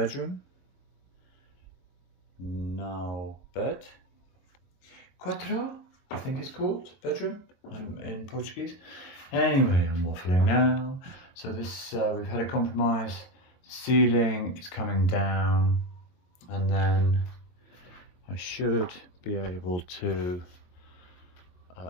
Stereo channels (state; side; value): late; right; 22 ms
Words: Now bed. Quatro, I think it's called, bedroom. I'm in Portuguese. Anyway, I'm waffling now. So this, we've had a compromise. The ceiling is coming down, and then I should be able to